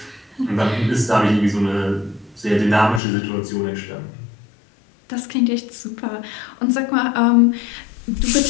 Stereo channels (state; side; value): drops out; right; at 3.0 s